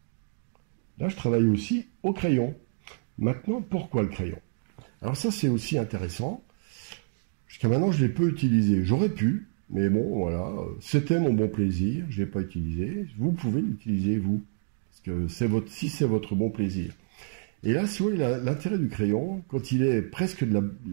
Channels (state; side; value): silent; left; digital silence